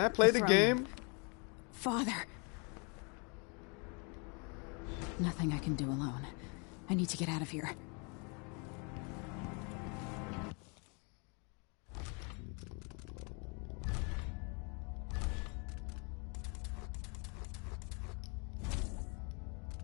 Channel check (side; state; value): right; quieter; 34.5 dB